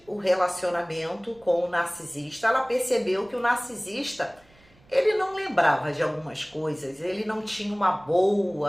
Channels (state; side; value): noise; right; rumble, 29 dB below the sound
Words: o relacionamento com o narcisista, ela percebeu que o narcisista, ele não lembrava de algumas coisas, ele não tinha uma